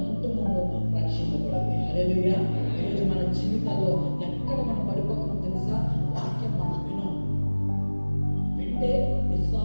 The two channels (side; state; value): both; inverted; correlation -1.00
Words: కుటుంబము రక్షింపబడింది. హల్లెలూయా. ఈరోజు మన జీవితాల్లో ఎక్కడ మనం పడిపోతున్నాం తెలుసా? వాక్యం మనం వింటే